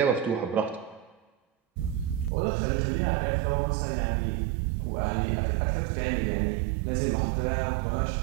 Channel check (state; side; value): drops out; left; at 2.3 s